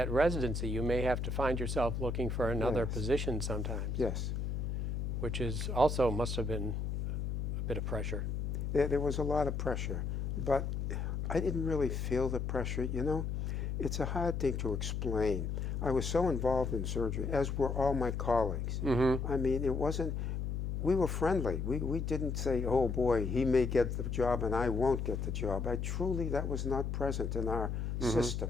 residency. You may have to find yourself looking for another position sometimes. Yes. Which is also must have been a bit of pressure. There was a lot of pressure, but I didn't really feel the pressure, you know. It's a hard thing to explain. I was so involved in surgery, as were all my colleagues. Mm-hmm. I mean, it wasn't, we were friendly. We didn't say, oh boy, he may get the job and I won't get the job. That was not present in our system.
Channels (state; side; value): noise; left; hum, 1 dB below the sound